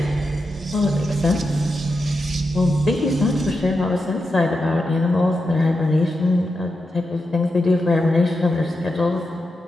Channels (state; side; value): normal; both; correlation 0.88